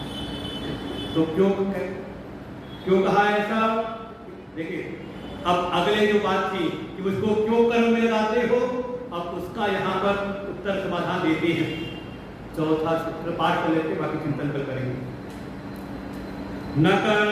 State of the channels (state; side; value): identical; both; correlation 1.00